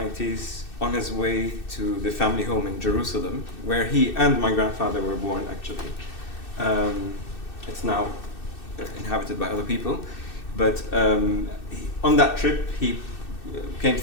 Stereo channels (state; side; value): late; right; 2.6 ms